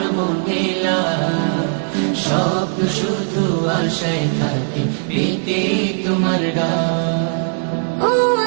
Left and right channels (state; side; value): silent; left; digital silence